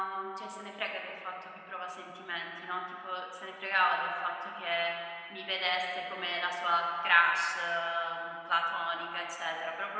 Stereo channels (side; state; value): both; identical; correlation 1.00